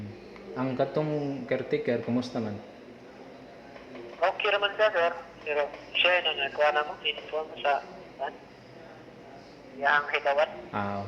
Ang katong caretaker, kumusta man? Okay naman siya sir, pero siya na nagkuha na mo, inform sa yang higawat.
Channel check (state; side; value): identical; both; correlation 1.00